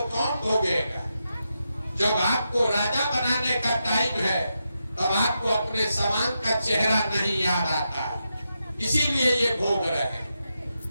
कौन भोगेगा? जब आपको राजा बनाने का टाइम है तब आपको अपने समान का चेहरा नहीं याद आता, इसीलिए ये भोग रहे हैं।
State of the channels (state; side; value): inverted; both; correlation -0.86